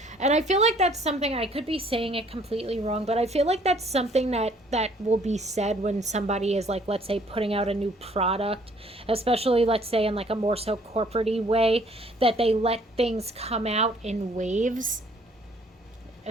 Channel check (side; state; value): both; normal; correlation 0.60